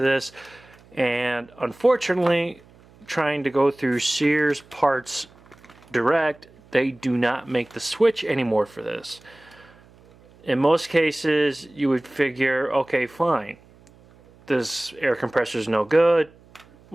and unfortunately, trying to go through Sears Parts Direct, they do not make the switch anymore for this. In most cases, you would figure, okay, fine, this air compressor is no good,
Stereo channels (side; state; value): right; noise; hum, 27 dB below the sound